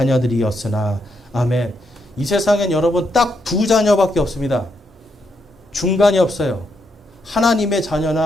아멘. 이 세상엔 여러분 딱 두 자녀밖에 없습니다. 중간이 없어요. 하나님의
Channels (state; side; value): normal; both; correlation 0.79